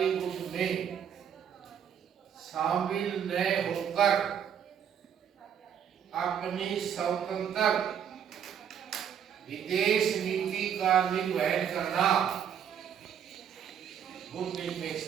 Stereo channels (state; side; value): quieter; left; 8.6 dB